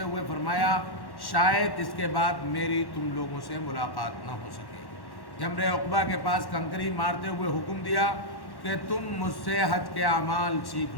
ہوئے فرمایا، شاید اس کے بعد میری تم لوگوں سے ملاقات نہ ہو سکے۔ جمرہ عقبہ کے پاس کنکری مارتے ہوئے حکم دیا کہ تم مجھ سے حج کے اعمال سیکھ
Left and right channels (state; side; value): late; right; 1.1 ms